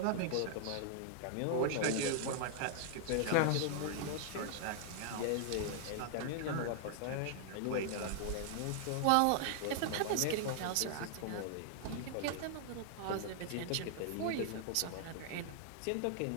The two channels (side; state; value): both; different; correlation 0.00